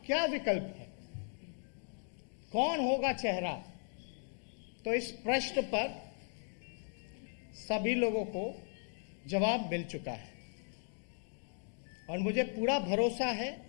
क्या विकल्प है, कौन होगा चेहरा। तो इस प्रश्न पर सभी लोगों को जवाब मिल चुका है और मुझे पूरा भरोसा है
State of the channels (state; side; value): silent; right; 53 dB below the other